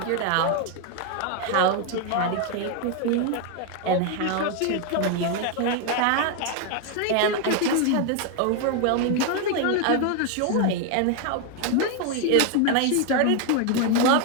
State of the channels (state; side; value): different; both; correlation 0.01